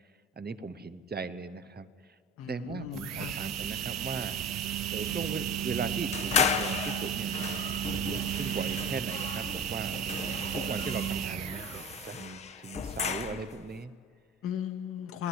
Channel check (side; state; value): both; normal; correlation 0.34